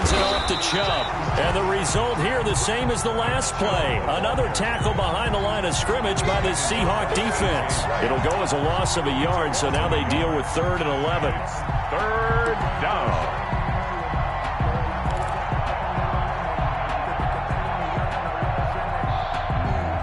it off to Chubb. And the result here the same as the last play. Another tackle behind the line of scrimmage by the Seahawk defense. It'll go as a loss of a yard, so now they deal with 3rd and 11. 3rd down.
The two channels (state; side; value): identical; both; correlation 1.00